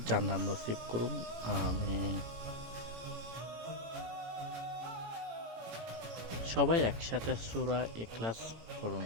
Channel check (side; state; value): left; late; 18 ms